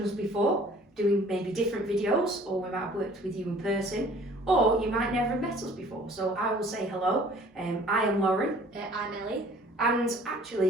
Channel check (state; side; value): normal; both; correlation 0.52